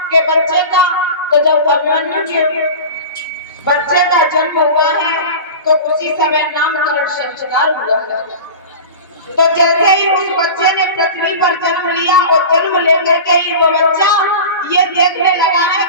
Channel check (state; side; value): inverted; both; correlation -0.32